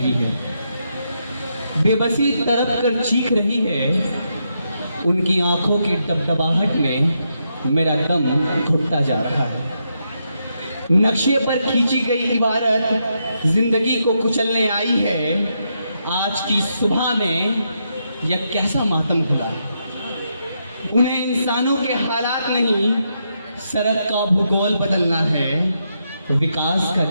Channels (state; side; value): inverted; both; correlation -0.81